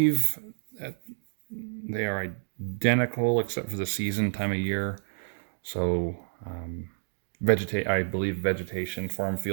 that they are identical except for the season, time of year. So I believe vegetation, farm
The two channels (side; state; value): left; silent; digital silence